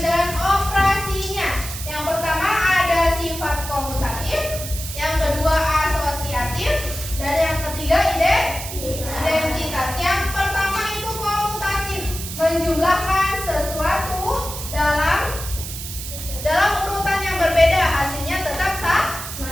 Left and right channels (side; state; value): right; noise; hiss, 8 dB below the sound